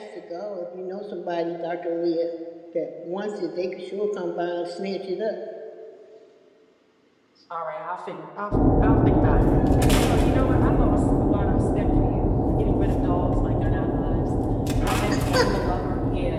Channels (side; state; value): both; identical; correlation 1.00